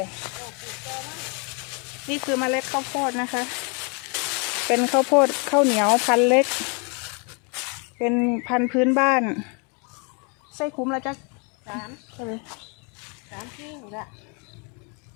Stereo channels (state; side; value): quieter; right; 34.8 dB